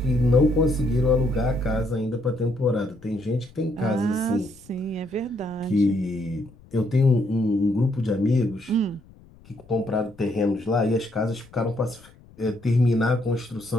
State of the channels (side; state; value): left; noise; rumble, 25 dB below the sound